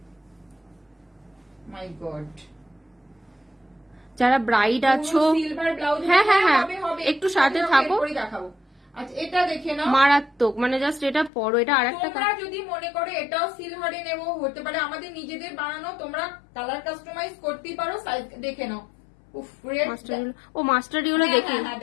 মাই গড। যারা ব্রাইড আছো, সিলভার ব্লাউজ, হ্যাঁ হ্যাঁ হ্যাঁ একটু সাথে থাকো। দেখাবো। আচ্ছা এটা দেখে নাও, মারাত্মক, মানে জাস্ট এটা পরো, এটা আরেকটা। তোমরা যদি মনে করো এটাও সিলভারে নেবো, হতে পারে, আমাদের নিজেদের বানানো, তোমরা কালার কাস্টমাইজ করতেই পারো, সাইজ দেখে নাও। মাস্টার ইয়েলো দেখি,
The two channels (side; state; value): right; drops out; at 11.3 s